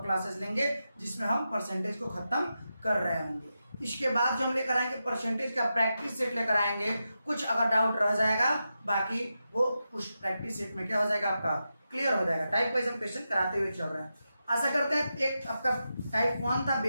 क्लासेस लेंगे जिसमें हम परसेंटेज को खत्म कर रहे होंगे। इसके बाद जो हम लेकर आएंगे परसेंटेज का प्रैक्टिस सेट लेकर आएंगे। कुछ अगर डाउट रह जाएगा बाकी वो उस प्रैक्टिस सेट में क्या हो जाएगा, आपका क्लियर हो जाएगा। टाइप वाइज हम क्वेश्चन कराते हुए चल रहे हैं। आशा करते हैं एक आपका टाइप 1 था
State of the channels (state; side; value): inverted; both; correlation -0.89